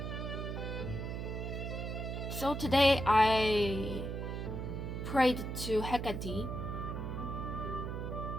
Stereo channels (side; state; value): right; noise; hum, 4 dB below the sound